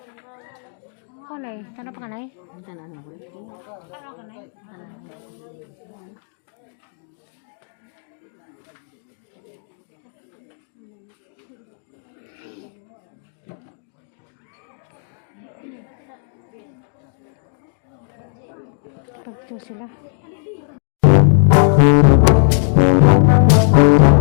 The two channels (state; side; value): silent; right; digital silence